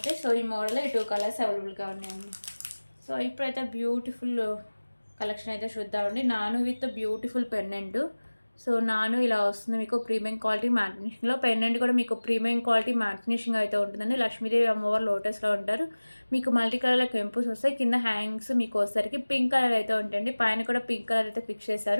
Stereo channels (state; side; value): inverted; both; correlation -1.00